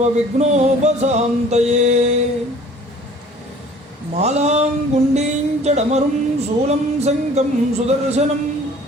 मालां गुण्डीं चडमरुं शूलं शङ्खं सुदर्शनं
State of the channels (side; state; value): both; normal; correlation 0.50